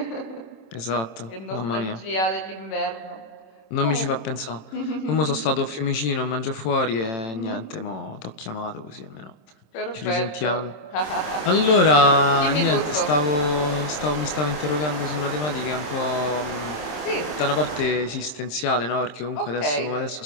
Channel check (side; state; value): right; late; 27 ms